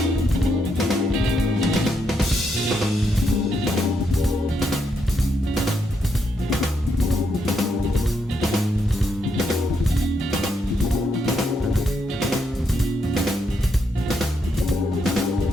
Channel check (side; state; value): both; normal; correlation 0.79